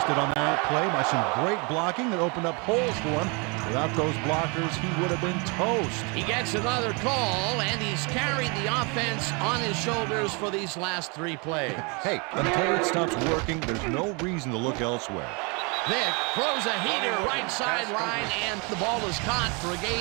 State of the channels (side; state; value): left; quieter; 31.4 dB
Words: on that play by some great blocking that opened up holes for him. Without those blockers, he would have been toast. He gets another call, and he's carried the offense on his shoulders for these last 3 plays. Hey, until it stops working, there's no reason to look elsewhere. Vick throws a heater right sideline, and the ball is caught for a